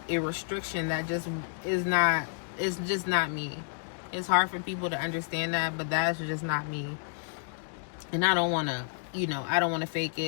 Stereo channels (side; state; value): right; silent; digital silence